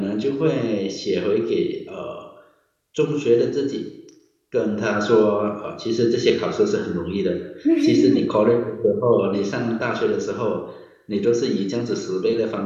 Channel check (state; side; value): identical; both; correlation 1.00